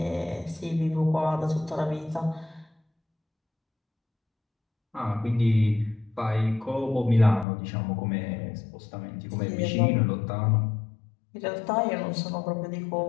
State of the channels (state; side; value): drops out; right; at 7.5 s